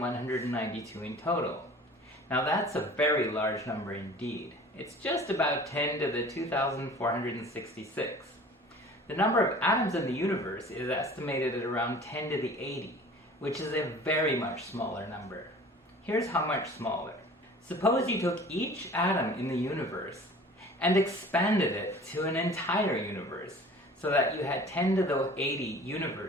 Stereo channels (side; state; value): both; normal; correlation 0.44